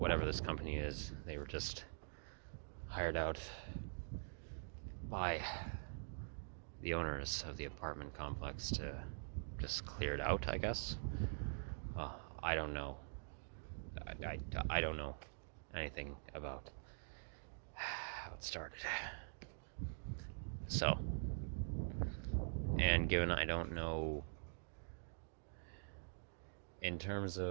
this company is, they were just hired out by the owners of the apartment complex to just clear it out, I guess. I don't know. I don't know anything about how it started. So, and given I don't know in terms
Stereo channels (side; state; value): left; silent; digital silence